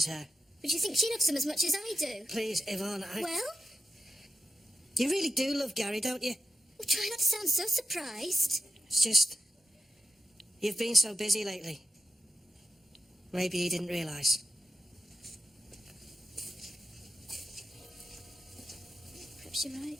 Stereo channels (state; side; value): normal; both; correlation 0.92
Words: her. But do you think she loves him as much as I do? Please, Yvonne, Well? You really do love Gary, don't you? Well, try not to sound so surprised. It's just... You've been so busy lately. Maybe he didn't realise. Perhaps you're right.